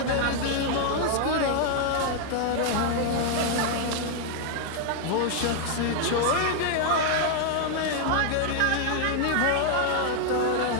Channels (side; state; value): both; different; correlation 0.00